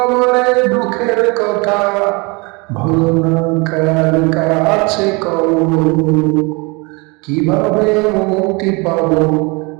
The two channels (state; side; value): quieter; left; 28.3 dB